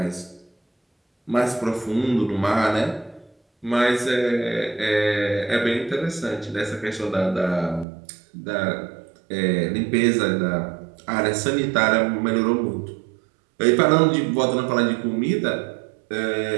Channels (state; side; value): drops out; left; at 7.9 s